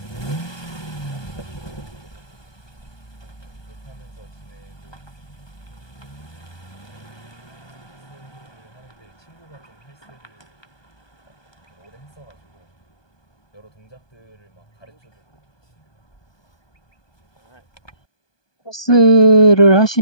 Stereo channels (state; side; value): late; right; 1.2 ms